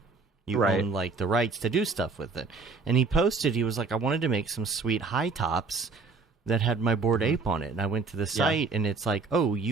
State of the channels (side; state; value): left; quieter; 4.3 dB